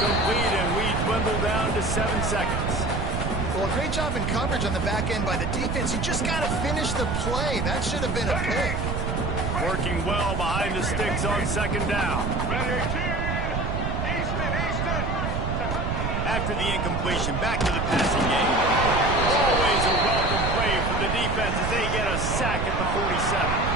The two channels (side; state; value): right; noise; rumble, 1 dB below the sound